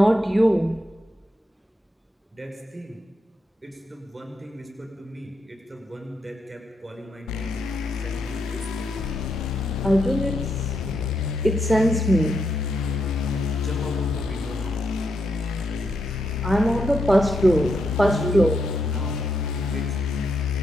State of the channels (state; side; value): normal; both; correlation 0.81